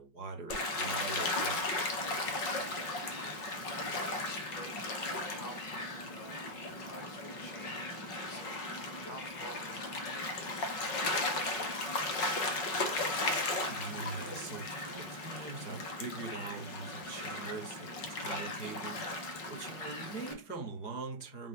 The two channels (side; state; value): right; late; 5.4 ms